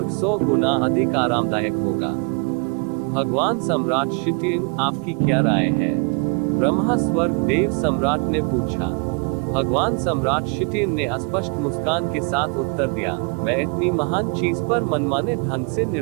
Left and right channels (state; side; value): quieter; left; 33.8 dB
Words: 100 गुना अधिक आरामदायक होगा। भगवान सम्राट शिटिन, आपकी क्या राय है? ब्रह्मा स्वर्ग देव सम्राट ने पूछा। भगवान सम्राट शिटिन ने स्पष्ट मुस्कान के साथ उत्तर दिया, मैं इतनी महान चीज पर मनमाने ढंग से